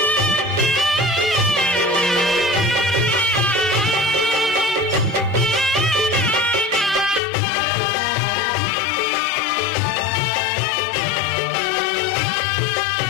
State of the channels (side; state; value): right; drops out; at 7.2 s